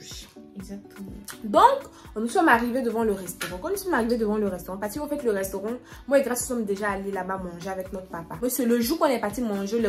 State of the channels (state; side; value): identical; both; correlation 1.00